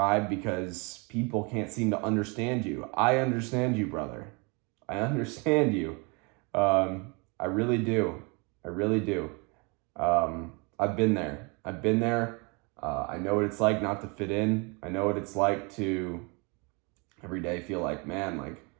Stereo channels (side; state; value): left; quieter; 30.7 dB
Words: because people can't seem to understand you. I understand you, brother. I understand you. I really do. I've been there. I've been there. I know what it's like not to fit in. I know what it's like to every day feel like, man, like